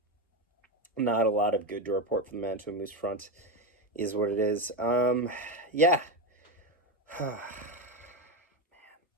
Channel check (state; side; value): normal; both; correlation 0.13